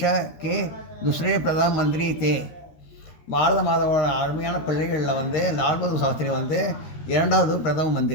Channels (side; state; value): right; late; 13 ms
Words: के दूसरे प्रधानमंत्री थे. பாரத மாதாவோட அருமையான பிள்ளைகளில் வந்து லால் பகதூர் சாஸ்திரி வந்து 2வது பிரதம